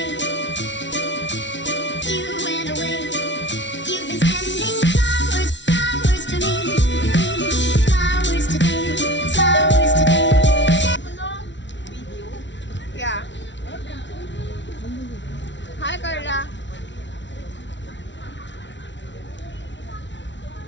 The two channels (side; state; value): right; late; 0.53 ms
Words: you've been sending flowers, flowers to me, flowers today, flowers today. yeah. Hi Carla.